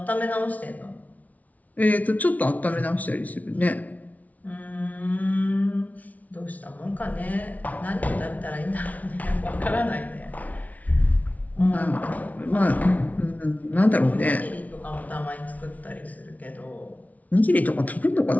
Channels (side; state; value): right; late; 0.072 ms